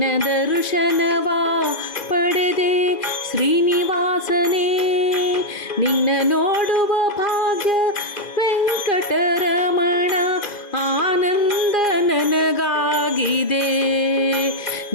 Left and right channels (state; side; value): late; right; 2.0 ms